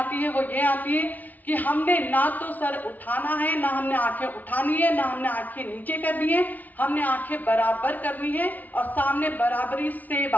है वो ये आती है कि हमने ना तो सर उठाना है, ना हमने आंखें उठानी है, ना हमने आंखें नीचे करनी है, हमने आंखें बराबर करनी है और सामने बराबरी से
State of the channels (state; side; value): late; right; 0.078 ms